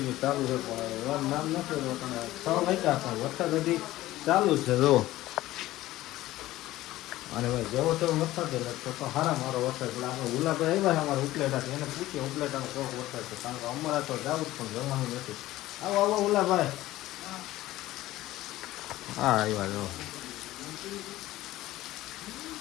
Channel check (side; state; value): right; quieter; 16.2 dB